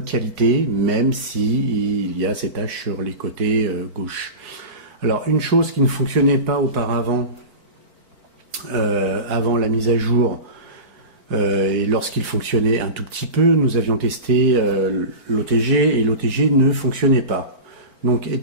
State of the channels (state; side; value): late; left; 4.4 ms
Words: qualité, même si il y a ces taches sur les côtés gauche. Alors une chose qui ne fonctionnait pas auparavant, avant la mise à jour, et lorsqu'il fonctionnait un tout petit peu, nous avions testé l'OTG et l'OTG ne fonctionnait pas. Donc